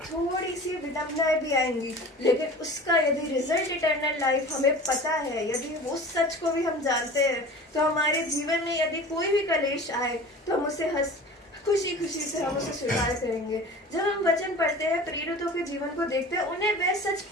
थोड़ी सी विडंबनाएं भी आएंगी, लेकिन उसका यदि रिजल्ट इटर्नल लाइफ हमें पता है, यदि उस सच को भी हम जानते हैं, तो हमारे जीवन में यदि कोई भी कलेश आए तो हम उसे खुशी खुशी से हम उसे स्वीकार करेंगे। जब हम वचन पढ़ते हैं, प्रेरितों के जीवन को देखते हैं, उन्हें वह सच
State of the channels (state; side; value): normal; both; correlation 0.39